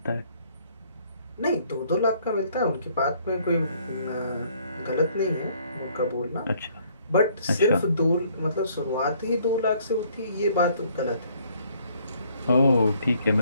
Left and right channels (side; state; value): both; inverted; correlation -0.63